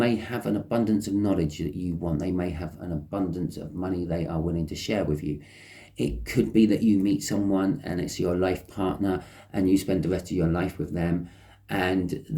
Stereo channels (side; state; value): both; identical; correlation 1.00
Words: have an abundance of knowledge that you want. They may have an abundance of money they are willing to share with you. It could be that you meet someone and it's your life partner and you spend the rest of your life with them, and